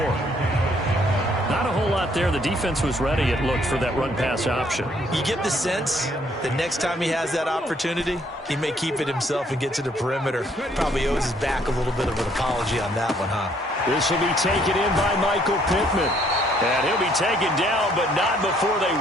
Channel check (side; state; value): both; normal; correlation 0.65